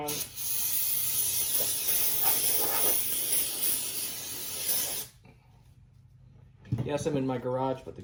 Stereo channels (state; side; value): identical; both; correlation 1.00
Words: Yes, I'm in my garage, but the